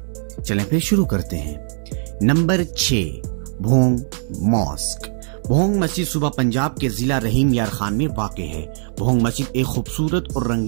چلیں پھر شروع کرتے ہیں۔ Number 6، Bhong mask. بھونگ مسجد صوبہ پنجاب کے ضلع رحیم یار خان میں واقع ہے۔ بھونگ مسجد ایک خوبصورت اور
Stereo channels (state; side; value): silent; left; digital silence